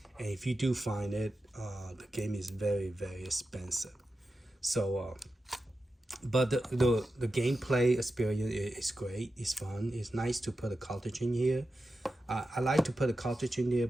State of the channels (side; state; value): both; normal; correlation 0.91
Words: and if you do find it, the game is very expensive. So but the gameplay experience is great. It's fun. It's nice to put a cartridge in here. I like to put a cartridge in there